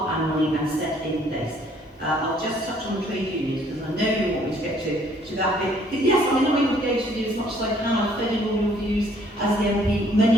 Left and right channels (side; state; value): both; normal; correlation 0.62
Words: annually and set in place. I'll just touch on the trade unions because I know you want me to get to that bit. Yes, I'm not able to go to you as much as I can. I've fed in all your views as the MP.